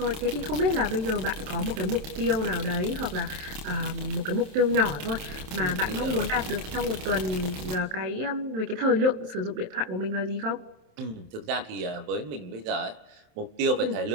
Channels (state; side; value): late; left; 27 ms